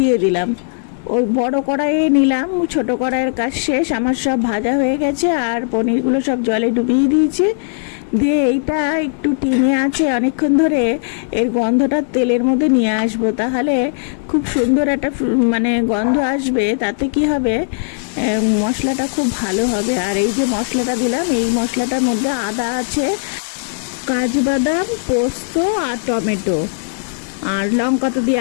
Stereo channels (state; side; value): silent; right; digital silence